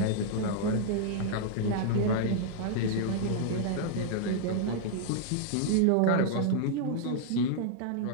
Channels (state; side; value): different; both; correlation -0.01